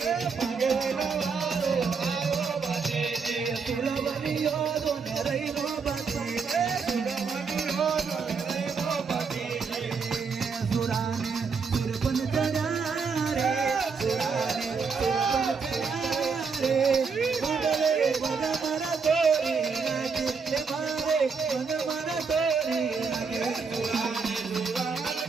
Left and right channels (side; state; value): left; quieter; 5.3 dB